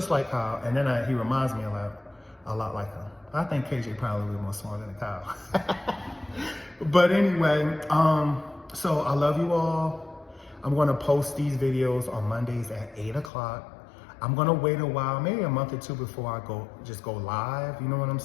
like Kyle, and then he reminds me a lot like him. I think KJ probably a little more smart than Kyle. But anyway, so I love you all. I'm going to post these videos on Mondays at 8 o'clock. I'm gonna wait a while, maybe a month or two before I go live, you know what I'm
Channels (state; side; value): drops out; right; at 13.3 s